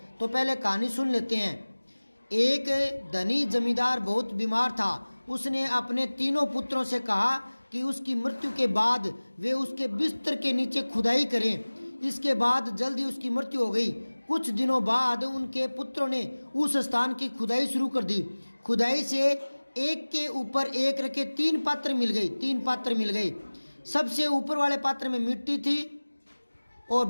तो पहले कहानी सुन लेते हैं। एक धनी जमींदार बहुत बीमार था। उसने अपने तीनों पुत्रों से कहा कि उसकी मृत्यु के बाद वे उसके बिस्तर के नीचे खुदाई करें। इसके बाद जल्दी उसकी मृत्यु हो गई। कुछ दिनों बाद उनके पुत्रों ने उस स्थान की खुदाई शुरू कर दी। खुदाई से एक के ऊपर एक रखे तीन पात्र मिल गए। सबसे ऊपर वाले पात्र में मिट्टी थी और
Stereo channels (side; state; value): both; inverted; correlation -1.00